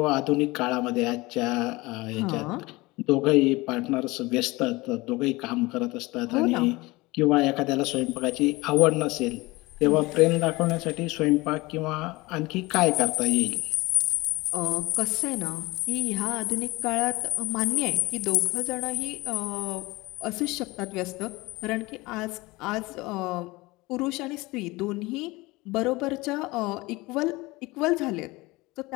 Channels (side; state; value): right; quieter; 22.0 dB